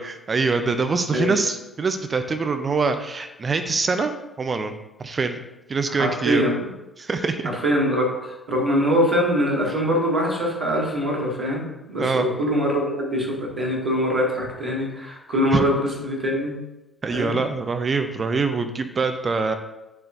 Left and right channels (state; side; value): normal; both; correlation 0.54